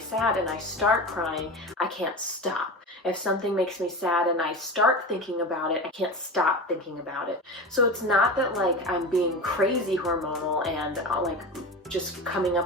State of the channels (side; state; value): both; normal; correlation 0.27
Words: and I start crying, I can't stop. If something makes me sad and I start thinking about it, I can't stop thinking about it. So it's not that like I'm being crazy hormonal and like just coming